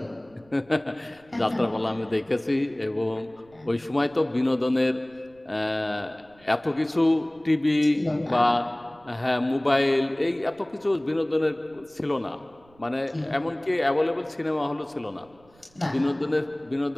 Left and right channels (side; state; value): right; noise; rumble, 30 dB below the sound